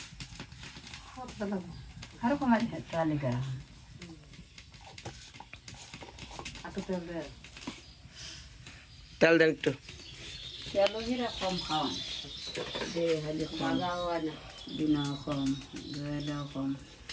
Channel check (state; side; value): identical; both; correlation 1.00